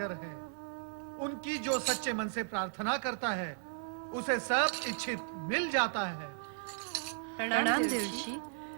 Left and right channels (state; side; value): silent; left; digital silence